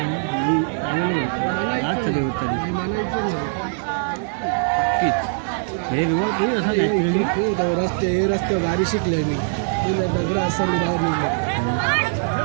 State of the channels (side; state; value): left; silent; digital silence